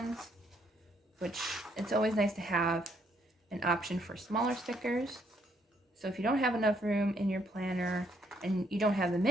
which it's always nice to have an option for smaller stickers. So if you don't have enough room in your planner and you don't have the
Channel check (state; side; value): normal; both; correlation 0.70